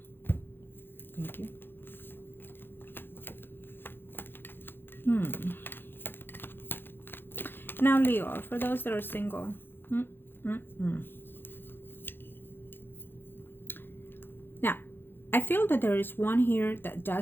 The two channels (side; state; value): right; late; 0.10 ms